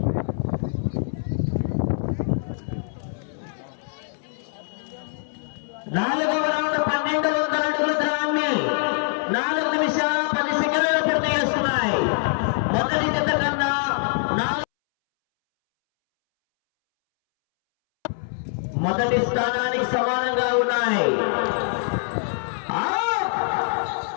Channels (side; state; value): right; silent; 63 dB below the other